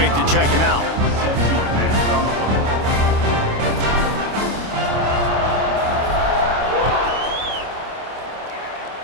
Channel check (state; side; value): late; left; 26 ms